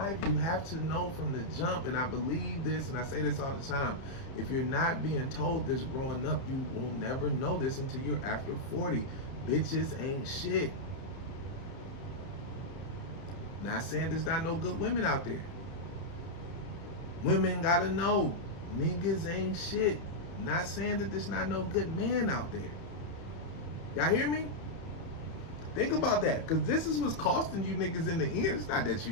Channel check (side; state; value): right; late; 30 ms